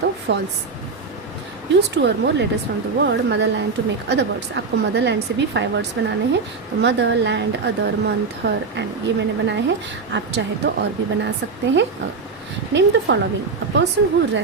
false. Use 2 or more letters from the word motherland to make other words। आपको मदरलैंड से भी 5 वर्ड्स बनाने हैं, तो mother, land, other, month, her, and, ये मैंने बनाए हैं। आप चाहे तो और भी बना सकते हैं। Name the following, a person who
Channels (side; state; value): left; quieter; 4.6 dB